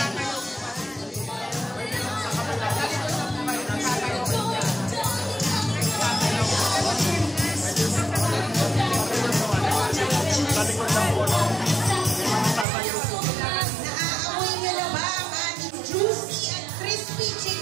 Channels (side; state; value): left; drops out; at 12.7 s